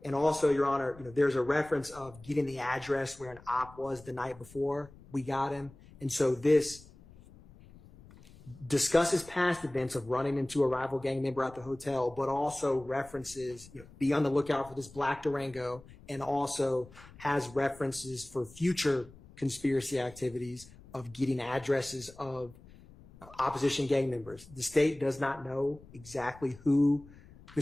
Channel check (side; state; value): left; noise; rumble, 22 dB below the sound